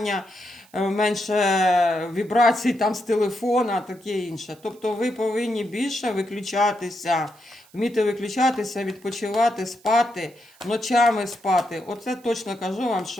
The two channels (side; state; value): right; noise; hiss, 28 dB below the sound